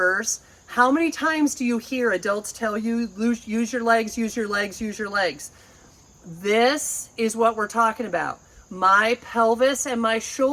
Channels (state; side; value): identical; both; correlation 1.00